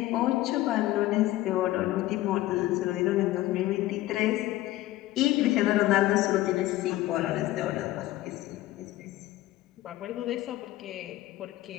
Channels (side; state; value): right; quieter; 16.1 dB